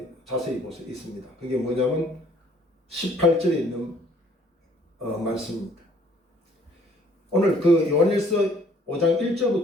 자세히 보세요. 있습니다. 그게 뭐냐면 18절에 있는 말씀입니다. 오늘 그 요한일서 5장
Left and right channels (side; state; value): both; normal; correlation 0.59